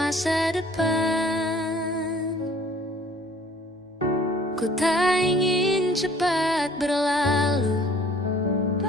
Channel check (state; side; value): normal; both; correlation 0.53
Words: depan. Ku tak ingin cepat berlalu